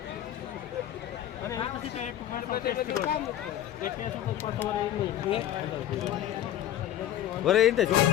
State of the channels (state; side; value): quieter; right; 11.9 dB